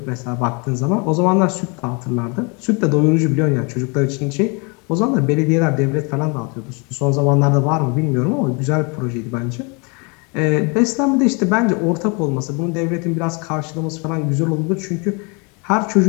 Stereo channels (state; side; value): quieter; right; 32.2 dB